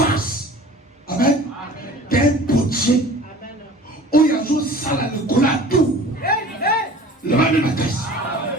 Amen. D'un potier. Où il y a une salle à l'école à tout. Le mal de ma caisse.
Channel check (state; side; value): normal; both; correlation 0.44